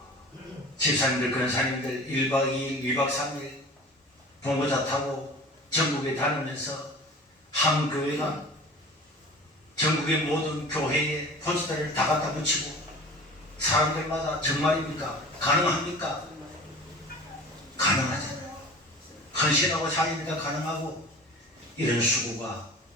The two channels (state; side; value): normal; both; correlation 0.40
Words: 집사님들, 권사님들 1박 2일, 2박 3일 봉고차 타고 전국에 다니면서 한 교회가 전국의 모든 교회에 포스터를 다 갖다 붙이고 사람들마다 정말입니까? 가능합니까? 가능하잖아요. 헌신하고 자기니까 가능하고 이런 수고가